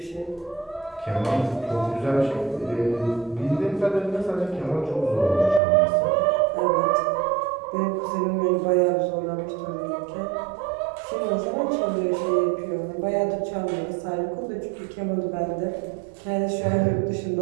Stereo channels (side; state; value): left; drops out; at 5.6 s